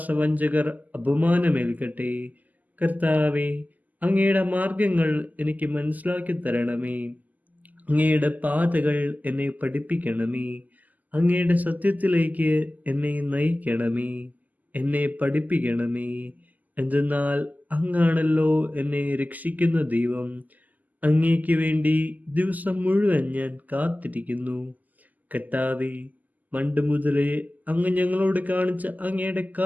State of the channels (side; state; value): left; late; 0.081 ms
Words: അപമാനമേൽക്കട്ടെ. കർത്താവേ, അങ്ങയുടെ മാർഗങ്ങൾ എനിക്ക് മനസ്സിലാക്കി തരണമേ. അങ്ങയുടെ പാതകൾ എന്നെ പഠിപ്പിക്കണമേ. അങ്ങയുടെ സത്യത്തിലേക്ക് എന്നെ നയിക്കണമേ. എന്നെ പഠിപ്പിക്കണമേ. എന്തെന്നാൽ അങ്ങാണല്ലോ എന്നെ രക്ഷിക്കുന്ന ദൈവം. അങ്ങേക്ക് വേണ്ടി ദിവസം മുഴുവൻ ഞാൻ കാത്തിരിക്കുന്നു. കർത്താവേ, പണ്ട് മുതലേ അങ്ങ് ഞങ്ങളോട് കാണിച്ച അങ്ങയുടെ